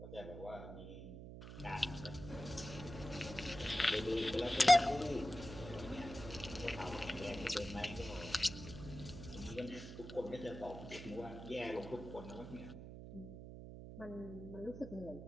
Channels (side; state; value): right; noise; hum, 11 dB below the sound